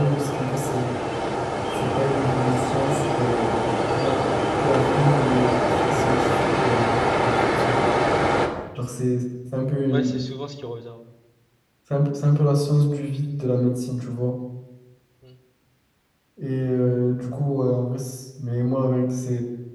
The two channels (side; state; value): both; identical; correlation 1.00